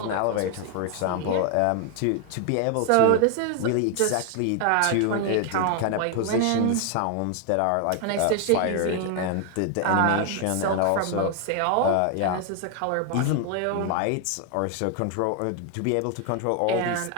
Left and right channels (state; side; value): different; both; correlation 0.00